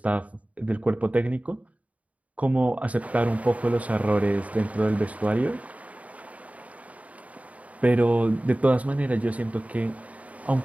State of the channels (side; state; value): left; late; 0.069 ms